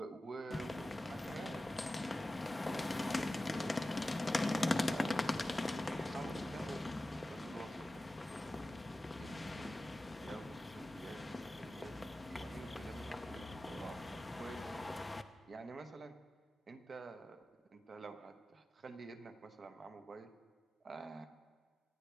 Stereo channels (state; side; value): normal; both; correlation 0.95